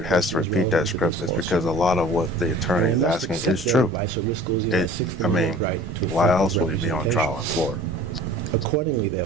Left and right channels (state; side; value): normal; both; correlation 0.46